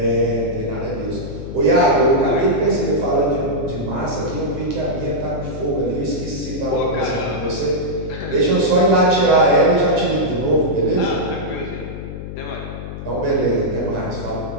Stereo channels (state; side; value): noise; left; hum, 9 dB below the sound